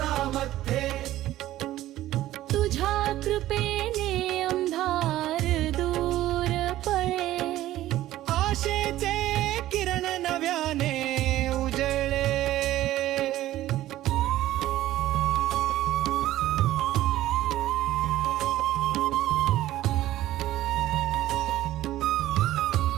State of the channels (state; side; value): quieter; left; 14.6 dB